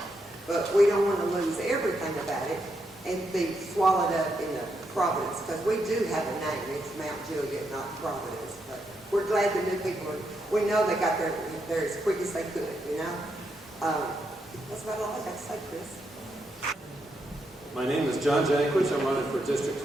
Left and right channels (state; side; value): normal; both; correlation 0.81